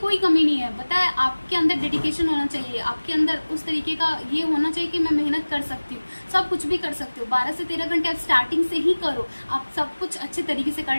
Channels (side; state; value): both; inverted; correlation -1.00